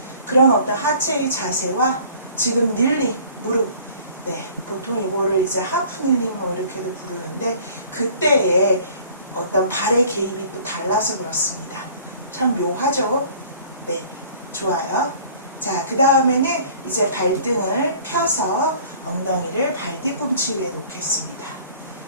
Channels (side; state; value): both; inverted; correlation -0.50